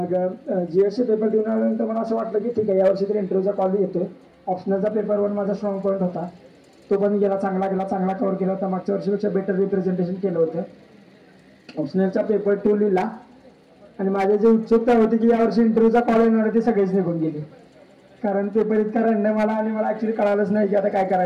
GSचे पेपर देऊन आल्यानंतर मला असं वाटलं की ठीक आहे, यावर्षी तरी इंटरव्ह्यूचा कॉल येतोय. ऑप्शनलचा पेपर 1 माझा स्ट्रॉंग पॉईंट होता, तो पण गेला, चांगला गेला, चांगला कव्हर केला होता. मागच्या वर्षीपेक्षा बेटर रिप्रेझेंटेशन केलं होतं. ऑप्शनलचा पेपर 2 लिहिला आणि माझी जी उत्सुकता होती की यावर्षी इंटरव्ह्यूचा कॉल येणार ते सगळेच निघून गेले. कारण पेपर इतका रंडम मला आणि मला ॲक्च्युली कळालंच नाही की आता काय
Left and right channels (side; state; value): both; identical; correlation 1.00